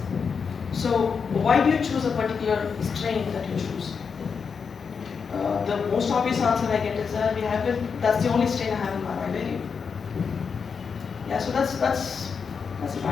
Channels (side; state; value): right; quieter; 5.9 dB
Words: So why do you choose a particular strain that you choose? The most obvious answer I get is that that's the only strain I have in my vivarium. Yeah, so that's a bad